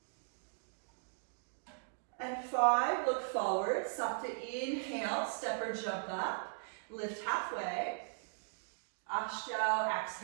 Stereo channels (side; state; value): left; silent; digital silence